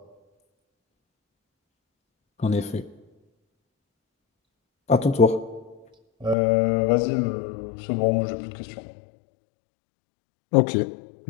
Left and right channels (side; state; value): right; drops out; at 6.4 s